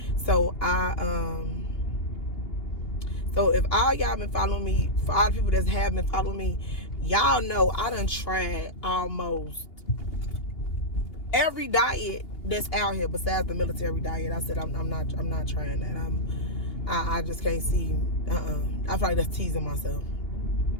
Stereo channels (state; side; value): late; right; 2.8 ms